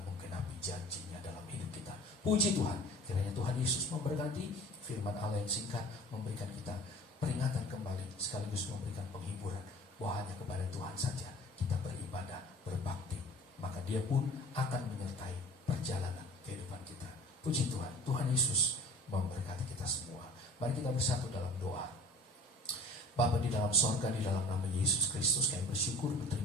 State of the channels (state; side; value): normal; both; correlation 0.44